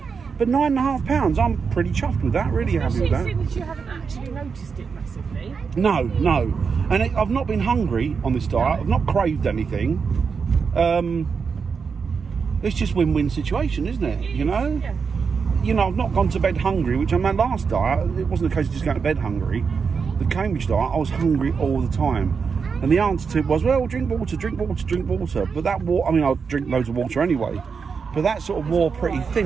9.5 pounds, I'm pretty chuffed with that. Really happy with that. Especially since you haven't actually noticed it massively. No. And I've not been hungry on this diet. I've not craved anything. It's just win-win situation, isn't it? You know? Yeah. You know, I've not gone to bed hungry, which on my last diet, it wasn't a case of just going to bed hungry. The Cambridge diet, I was hungry all the time. And the answer to it was, well, drink water. But that water, I mean, I'll drink loads of water anyway. But that sort of wore pretty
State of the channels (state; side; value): quieter; left; 5.7 dB